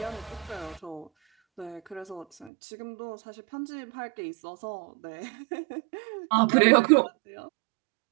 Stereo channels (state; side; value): drops out; left; at 2.5 s